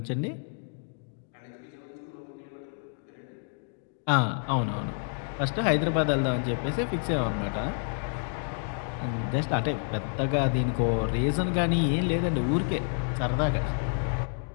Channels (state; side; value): silent; right; 59 dB below the other